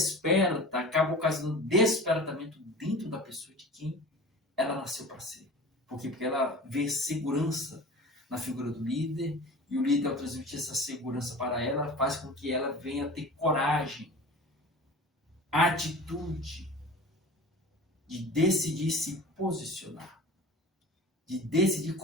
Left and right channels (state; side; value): normal; both; correlation 0.38